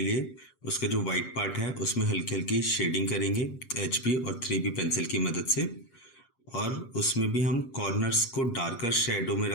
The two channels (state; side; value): late; right; 7.5 ms